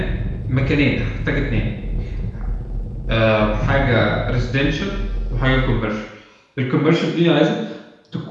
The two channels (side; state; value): both; identical; correlation 1.00